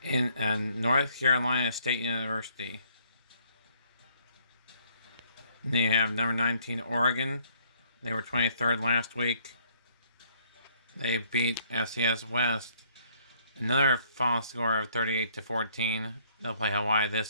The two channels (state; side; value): inverted; both; correlation -0.64